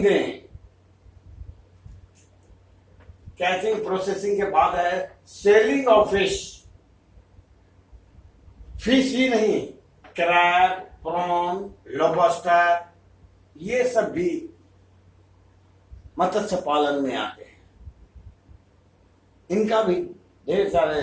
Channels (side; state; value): both; identical; correlation 1.00